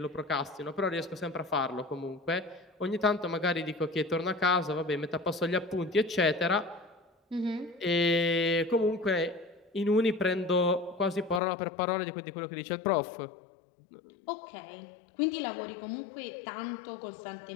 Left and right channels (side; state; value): right; drops out; at 11.4 s